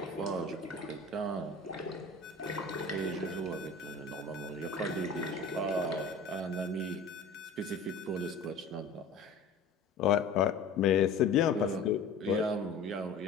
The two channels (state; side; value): quieter; right; 4.0 dB